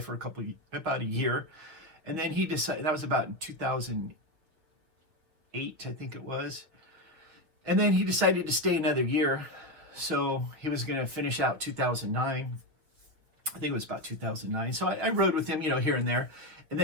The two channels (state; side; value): late; left; 6.1 ms